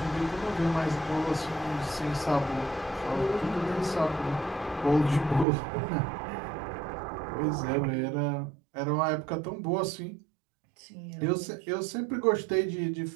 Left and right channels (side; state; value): left; drops out; at 5.5 s